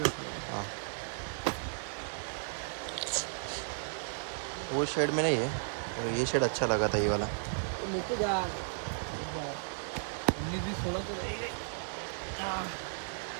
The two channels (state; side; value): silent; left; digital silence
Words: रखो. हाँ वो शेड में नहीं है, तो ये शेड अच्छा लगा था, ये वाला. नीचे जा. उन्नीस भी 16 तो रहेगा.